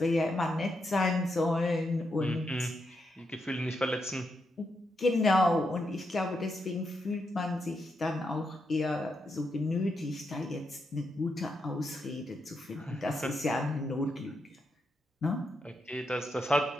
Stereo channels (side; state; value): both; normal; correlation 0.83